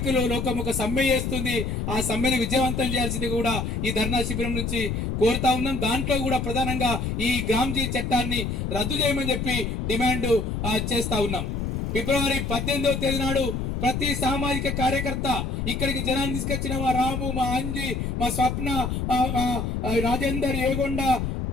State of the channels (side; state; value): left; noise; rumble, 2 dB below the sound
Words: లోకం ఒక సమ్మె చేస్తుంది. ఆ సమ్మెను విజయవంతం చేయాల్సింది కూడా ఈ ధర్నా శిబిరం నుంచి కోరుతా ఉన్నాం. దాంట్లో కూడా ప్రధానంగా ఈ గ్రామ్జీ చట్టాన్ని రద్దు చేయమని చెప్పి డిమాండ్ చేస్తా ఉన్నాం. ఫిబ్రవరి 18వ తేదీ నాడు ప్రతి సామాజిక కార్యకర్త ఇక్కడికి జనాన్ని తీసుకొచ్చిన మా రాము, మా అంజి, మా స్వప్న, రాజేందర్, ఏగొండ,